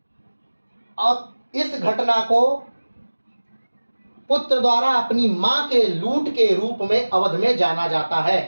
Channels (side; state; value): both; inverted; correlation -1.00